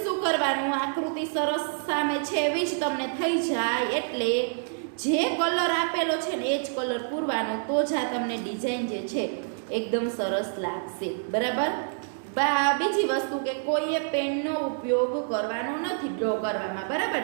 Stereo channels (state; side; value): silent; left; digital silence